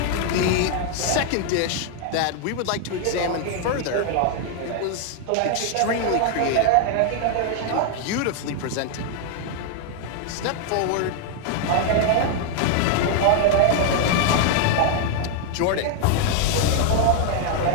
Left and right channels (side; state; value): both; different; correlation 0.00